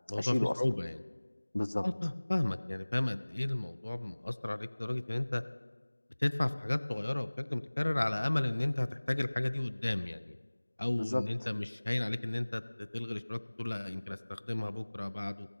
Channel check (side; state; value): both; inverted; correlation -1.00